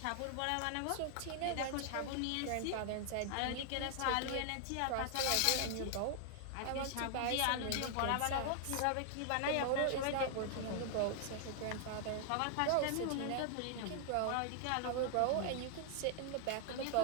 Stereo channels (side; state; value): both; different; correlation 0.00